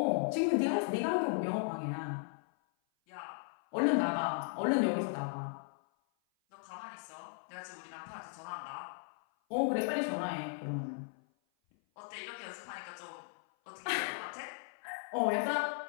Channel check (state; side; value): silent; right; 53 dB below the other